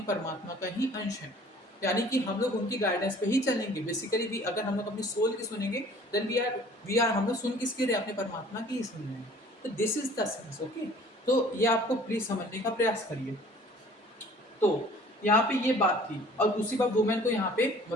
परमात्मा का ही अंश हैं, यानी कि हम लोग उनकी गाइडेंस पे ही चलेंगे। बेसिकली भी अगर हम लोग अपनी सोल की सुनेंगे, देन वी आर हम लोग सुन किसके रहे? अपने परमात्मा की ही सुन रहे हैं। तो this is the sense, okay. तो ये आपको प्लीज समझने का प्रयास करिए। तो यहाँ पे ये बात थी, और दूसरी बात वुमेन को यहाँ पे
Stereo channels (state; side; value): normal; both; correlation 0.51